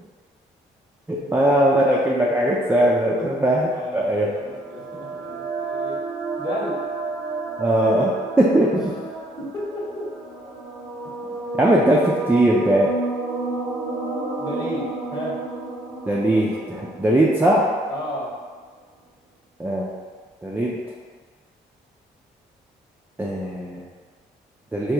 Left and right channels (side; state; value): both; normal; correlation 0.68